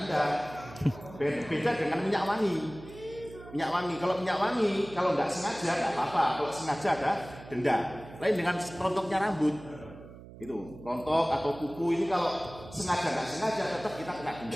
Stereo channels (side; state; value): right; noise; hum, 17 dB below the sound